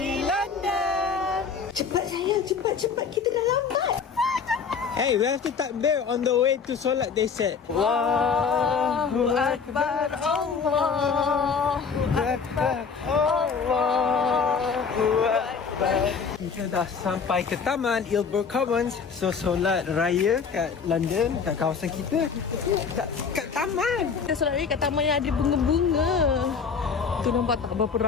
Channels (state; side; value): quieter; right; 5.8 dB